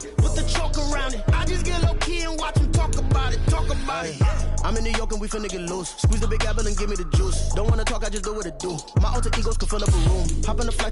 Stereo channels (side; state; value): both; identical; correlation 1.00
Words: with the chalk around it. I just get low key and watch them talk about it. I'm in New York and we finna get loose. Squeeze the big apple and give me the juice. Don't wanna talk, I just do what it do. My alter egos can fill up a room. Hop in the